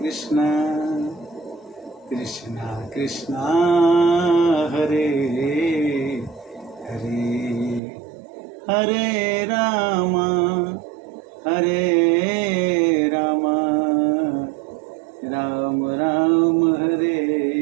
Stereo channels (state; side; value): drops out; left; at 7.8 s